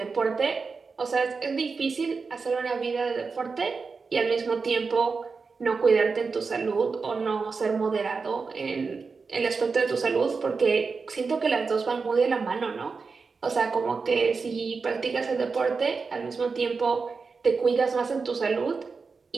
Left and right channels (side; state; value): left; quieter; 4.7 dB